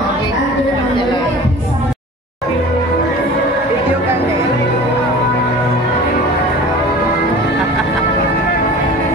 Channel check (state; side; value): normal; both; correlation 0.40